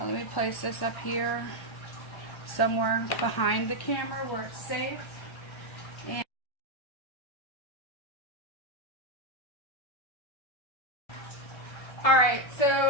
me place this up here somewhere behind the camera where it's safe. And alright,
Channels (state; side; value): late; right; 1.3 ms